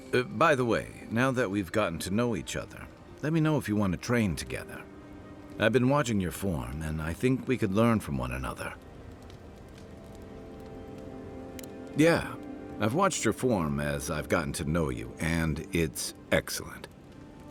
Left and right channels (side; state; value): both; identical; correlation 1.00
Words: By the way, now that we've gotten to know each other, let me know if you want to train together. I've been watching your form, and I think we could learn from one another. Yeah, I've watched your form as I've gotten to know you, and it's excellent.